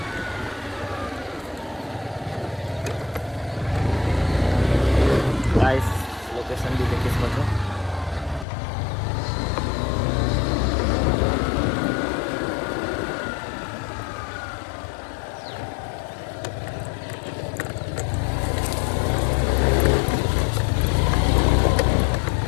गाइस लोकेशन भी देखिए इसको तो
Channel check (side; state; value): right; drops out; at 8.5 s